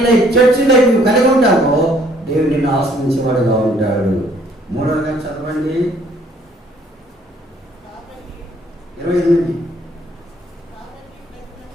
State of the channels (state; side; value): normal; both; correlation 0.62